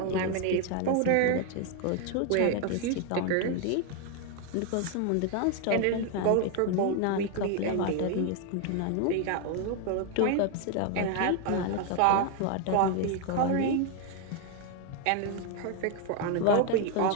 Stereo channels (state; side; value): different; both; correlation 0.01